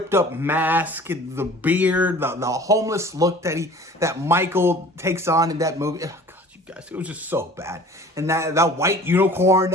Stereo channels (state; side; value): normal; both; correlation 0.45